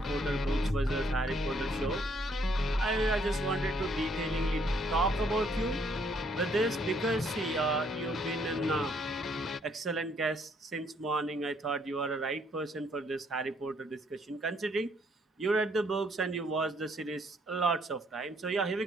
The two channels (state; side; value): normal; both; correlation 0.68